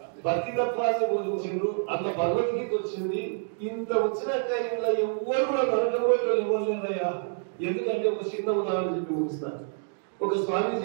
భక్తితత్వాన్ని బోధించిండు. అట్లా భగవద్గీత వచ్చింది. ఇంత వచ్చినట్టే ఇంట్లో ఎవ్వరు కూడా నరకపోయే వాళ్ళు ఎవరు లేదయ్యా. ఎందుకంటే ఒక చిన్న ఉదాహరణ చెప్పి ముగిస్తాను. ఒక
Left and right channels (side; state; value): left; silent; digital silence